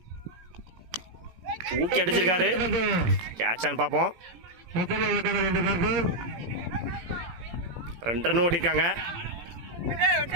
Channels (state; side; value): late; left; 18 ms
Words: தூக்கி அடிச்சிருக்காரு. கேட்சான்னு பார்ப்போம். 2 ரன் ஓடிருக்காங்க.